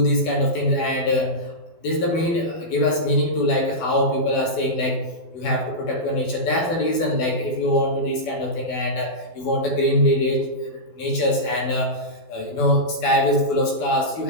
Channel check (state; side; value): late; right; 12 ms